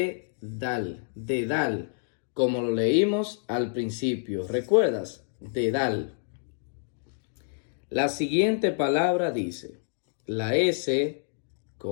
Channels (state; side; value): silent; right; digital silence